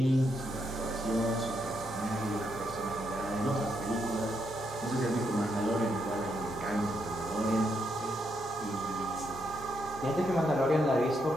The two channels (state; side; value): normal; both; correlation 0.78